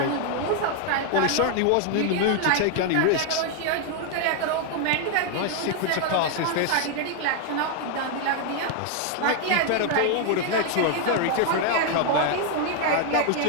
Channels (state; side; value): different; both; correlation 0.00